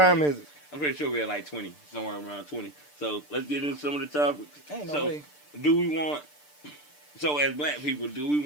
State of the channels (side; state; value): right; late; 6.7 ms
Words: is it? I'm pretty sure we're at like 20, somewhere around 20. So let's get into some of the topics. Ain't no way. Do we want? So as Black people, do we